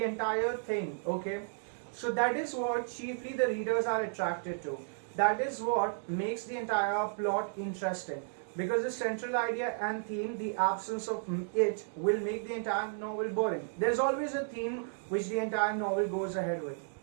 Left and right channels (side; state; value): left; silent; digital silence